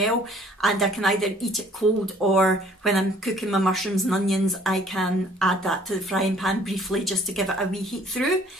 and I can either eat it cold, or when I'm cooking my mushrooms and onions, I can add that to the frying pan briefly just to give it a wee heat through.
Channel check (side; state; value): both; normal; correlation 0.57